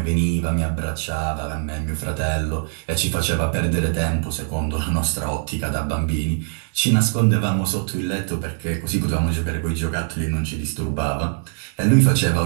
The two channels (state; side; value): silent; left; 60 dB below the other